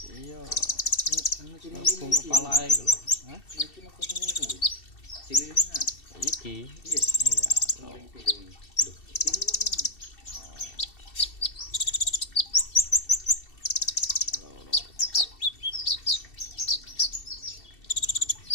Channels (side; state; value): right; late; 2.7 ms